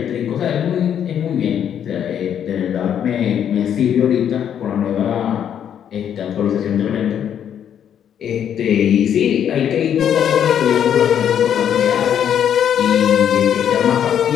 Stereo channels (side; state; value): right; quieter; 9.2 dB